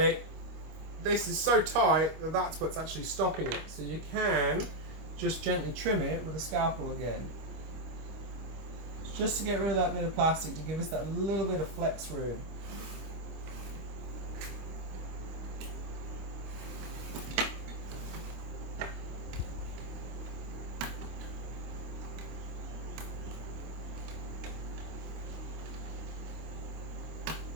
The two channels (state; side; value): late; left; 25 ms